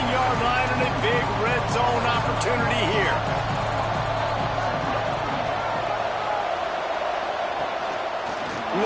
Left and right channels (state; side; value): identical; both; correlation 1.00